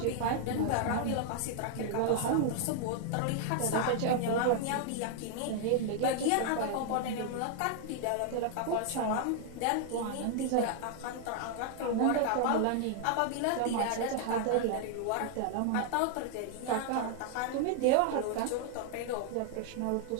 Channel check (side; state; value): both; different; correlation 0.00